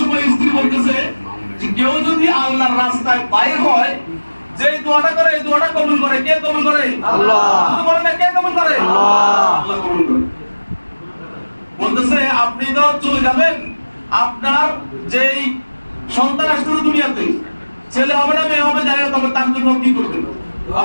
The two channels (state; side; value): inverted; both; correlation -1.00